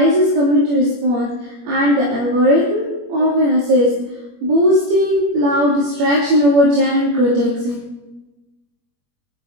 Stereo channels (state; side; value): late; left; 21 ms